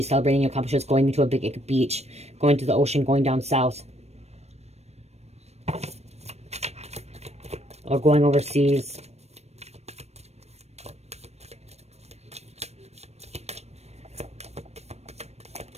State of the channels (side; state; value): left; late; 0.31 ms